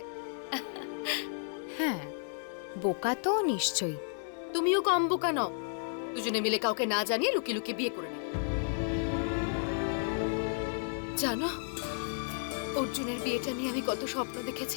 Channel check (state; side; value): silent; right; digital silence